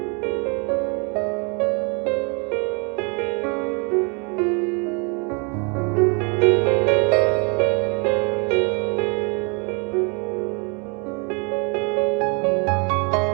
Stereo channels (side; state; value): left; quieter; 34.5 dB